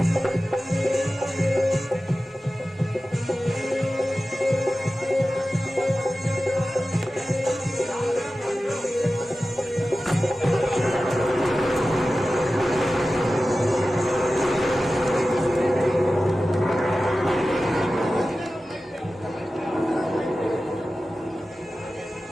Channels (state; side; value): normal; both; correlation 0.95